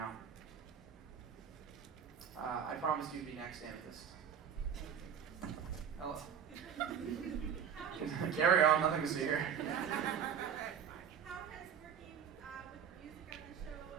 I promised you'd be next, Amethyst. Hello. Carry on, nothing to see here. How has working with the music on the show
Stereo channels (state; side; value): quieter; left; 7.9 dB